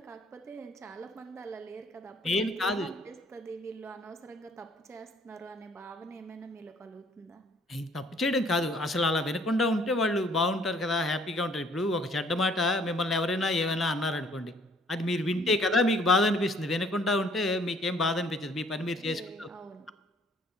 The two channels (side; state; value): both; normal; correlation 0.60